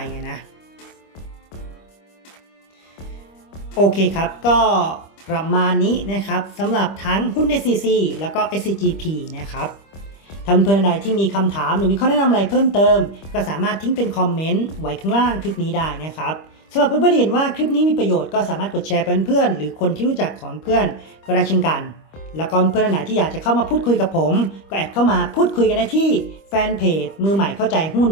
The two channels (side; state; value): right; late; 25 ms